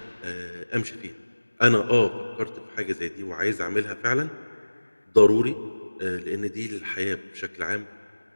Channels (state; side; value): inverted; both; correlation -1.00